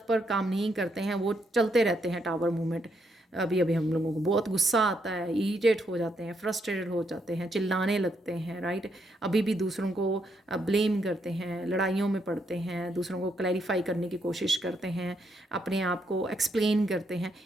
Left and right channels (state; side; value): normal; both; correlation 0.77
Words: पर काम नहीं करते हैं, वो चलते रहते हैं टावर मूवमेंट, अभी हम लोगों को बहुत गुस्सा आता है, इरिटेट हो जाते हैं, फ्रस्ट्रेटेड हो जाते हैं, चिल्लाने लगते हैं, राइट। अभी भी दूसरों को ब्लेम करते हैं, लड़ाइयों में पड़ते हैं, दूसरों को क्लैरिफाई करने की कोशिश करते हैं, अपने आप को एक्सप्लेन करते हैं।